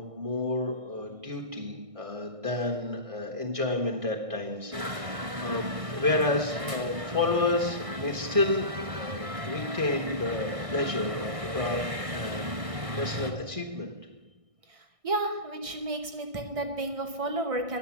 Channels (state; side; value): late; left; 1.6 ms